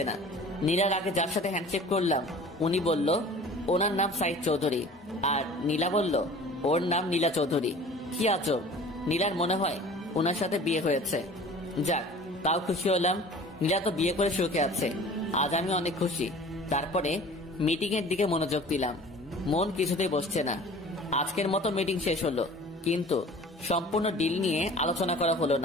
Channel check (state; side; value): normal; both; correlation 0.44